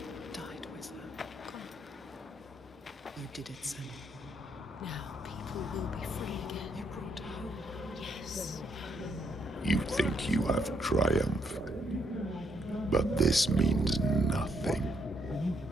died with her. You did it, Senua. Now people will be free again. You brought her home. Yes. You think you have triumphed, but this means nothing.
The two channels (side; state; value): both; normal; correlation 0.74